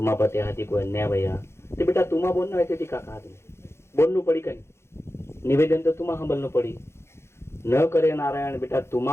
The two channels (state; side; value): late; right; 0.12 ms